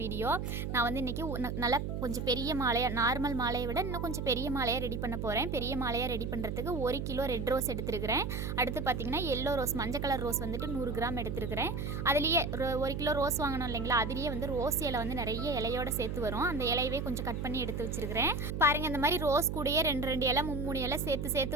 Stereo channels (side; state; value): right; noise; hum, 3 dB below the sound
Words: வீடியோ நான் வந்து இன்றைக்கி நல்லா கொஞ்சம் பெரிய மாலையாக, நார்மல் மாலையை விட இன்னும் கொஞ்சம் பெரிய மாலையாக ரெடி பண்ண போகிறேன். பெரிய மாலையாக ரெடி பண்ணுறதுக்கு 1 கிலோ ரெட் ரோஸ் எடுத்துருக்கிறேன். அடுத்து பார்த்திங்கன்னா எல்லோ ரோஸ், மஞ்சள் கலர் ரோஸ் வந்துட்டு 100 கிராம் எடுத்துருக்கிறேன். அதுலேயே 1 கிலோ ரோஸ் வாங்கணும் இல்லைங்களா, அதுலேயே வந்து ரோஸ் இலை வந்து நிறைய இலையோடு சேர்த்து வரும். அந்த இலையவே கொஞ்சம் கட் பண்ணி எடுத்து வச்சிருக்கிறேன். பாருங்க, இந்த மாதிரி ரோஸ் கூடயே 2 இலை 3 இலை